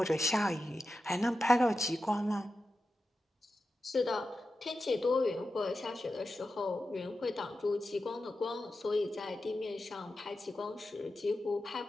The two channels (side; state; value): both; normal; correlation 0.91